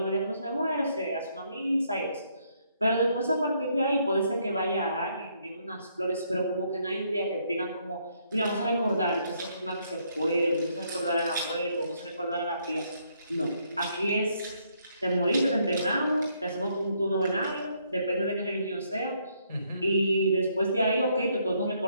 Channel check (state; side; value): inverted; both; correlation -0.72